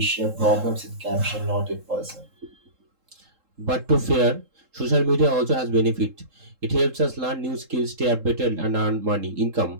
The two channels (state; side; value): late; left; 3.7 ms